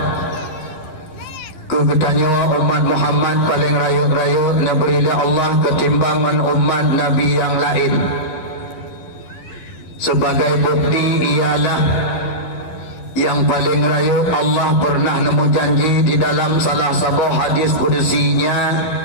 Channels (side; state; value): right; late; 12 ms